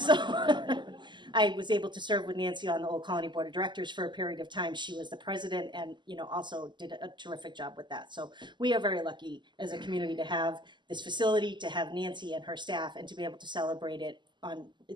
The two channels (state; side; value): late; left; 0.22 ms